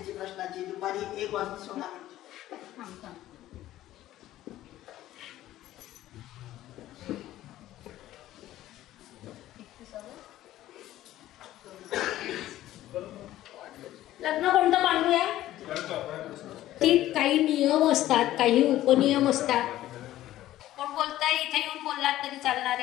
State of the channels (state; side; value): quieter; right; 14.3 dB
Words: प्रश्नाची दुपारी 1 वाजता 16 मिनिटे. लग्न कोणतं मांडूया? ती काही नियम असतात, काही उपनियम असतात. कोण बोलताय? इथे येऊन बोललात तरी चालणार